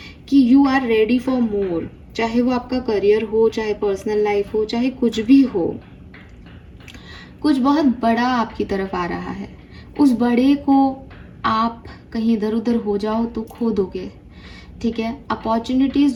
कि you are ready for more, चाहे वो आपका करियर हो, चाहे पर्सनल लाइफ हो, चाहे कुछ भी हो, कुछ बहुत बड़ा आपकी तरफ आ रहा है। उस बड़े को आप कहीं इधर उधर हो जाओ तो खो दोगे, ठीक है। अपॉर्चुनिटीज़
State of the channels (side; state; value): both; identical; correlation 1.00